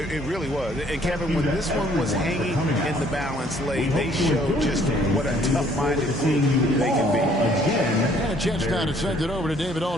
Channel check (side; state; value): both; normal; correlation 0.61